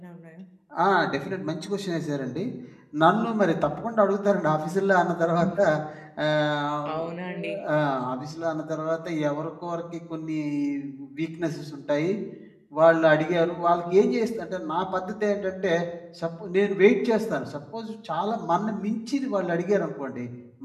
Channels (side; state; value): both; identical; correlation 1.00